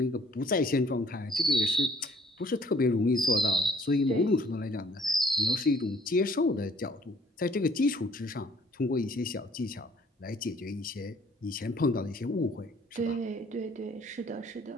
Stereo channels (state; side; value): normal; both; correlation 0.60